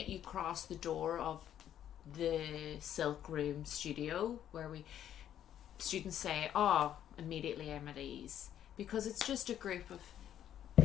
you cross the door of the Silk Room studio, where students say, oh, immediately I'm at ease, because it's just a group of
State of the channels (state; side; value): quieter; right; 10.6 dB